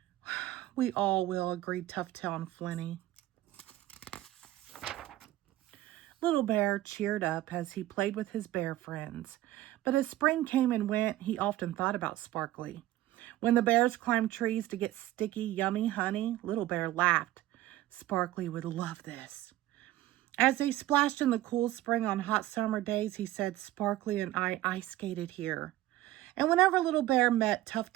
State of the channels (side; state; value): left; quieter; 15.2 dB